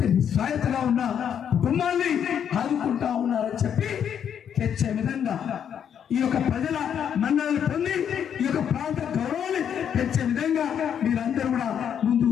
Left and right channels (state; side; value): quieter; right; 8.5 dB